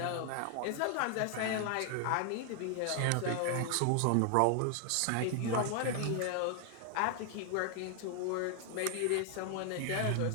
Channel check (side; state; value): both; different; correlation 0.00